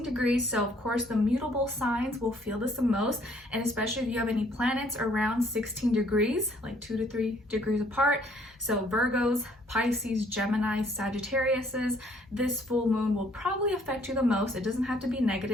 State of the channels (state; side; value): normal; both; correlation 0.63